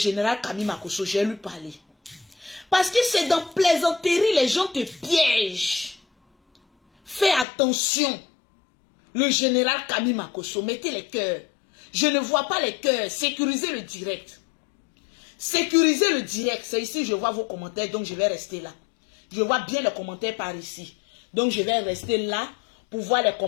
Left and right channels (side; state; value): right; drops out; at 7.5 s